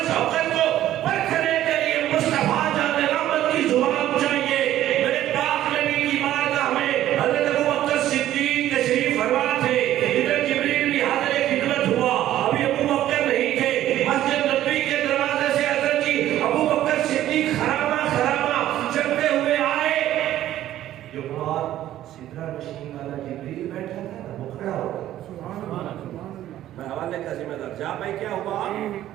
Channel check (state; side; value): quieter; left; 13.0 dB